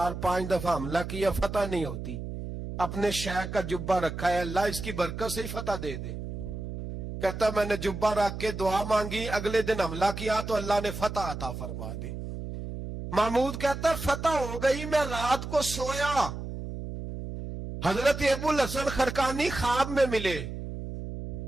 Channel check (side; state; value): right; noise; hum, 7 dB below the sound